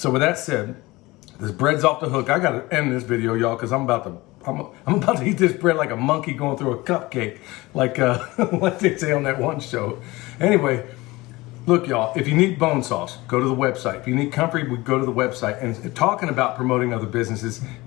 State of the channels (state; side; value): quieter; right; 20.9 dB